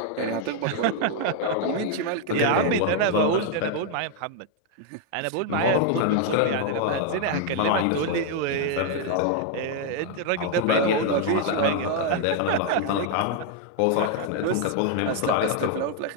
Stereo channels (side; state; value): both; different; correlation 0.00